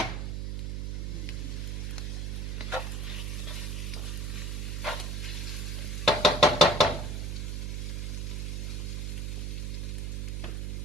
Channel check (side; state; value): right; noise; hum, 2 dB below the sound